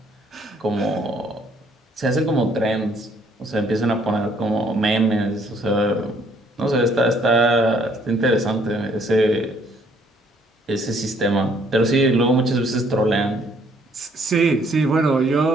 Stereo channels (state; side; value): normal; both; correlation 0.64